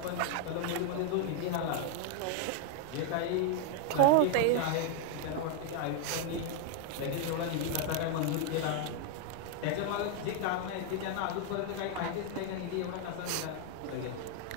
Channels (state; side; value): different; both; correlation 0.01